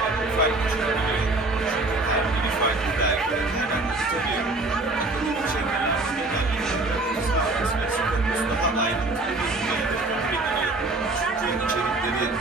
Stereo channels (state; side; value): quieter; left; 3.0 dB